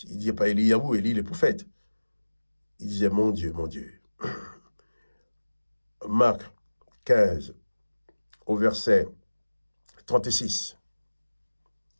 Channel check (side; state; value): both; inverted; correlation -1.00